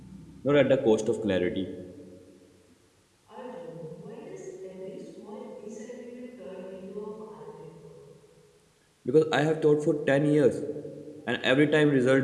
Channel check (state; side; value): identical; both; correlation 1.00